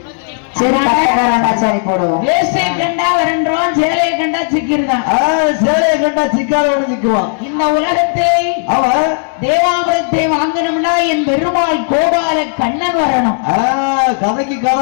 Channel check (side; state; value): right; silent; digital silence